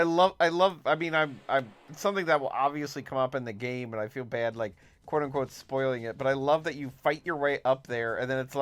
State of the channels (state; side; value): identical; both; correlation 1.00